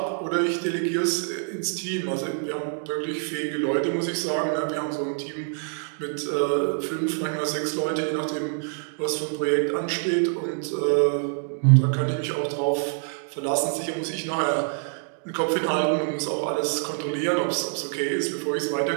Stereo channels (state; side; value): silent; left; 61 dB below the other